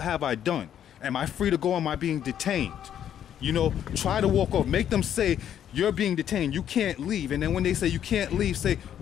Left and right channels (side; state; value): right; quieter; 9.9 dB